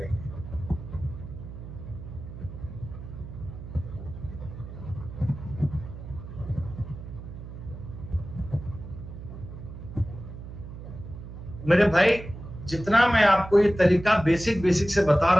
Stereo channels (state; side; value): noise; right; hum, 12 dB below the sound